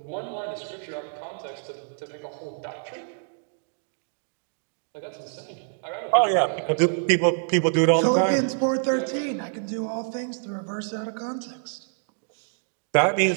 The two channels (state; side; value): silent; left; digital silence